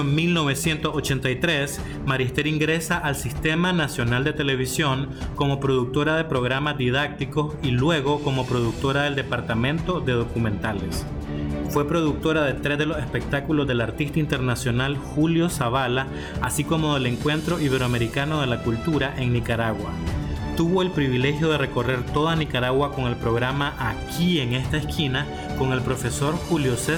1983, María Esther ingresa al Sistema Nacional de Televisión como productora de programas didácticos y luego como productora del Departamento de Documentales. Fue productora de 3 de los espectáculos del artista internacional Julio Zavala, así como del Encuentro Iberoamericano de la Cultura en Nicaragua. tuvo el privilegio de recorrer toda Nicaragua con el programa Aquí en esta esquina con el profesor Julio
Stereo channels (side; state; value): both; identical; correlation 1.00